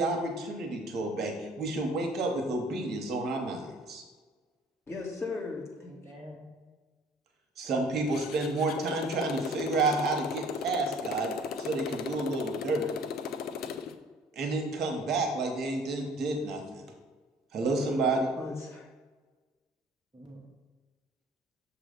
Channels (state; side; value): normal; both; correlation 0.52